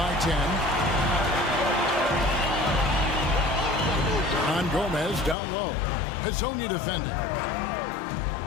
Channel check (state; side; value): drops out; right; at 5.4 s